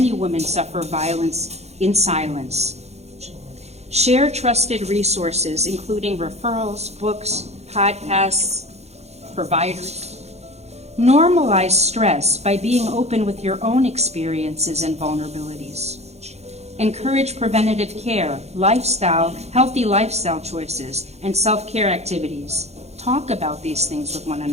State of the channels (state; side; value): late; left; 0.31 ms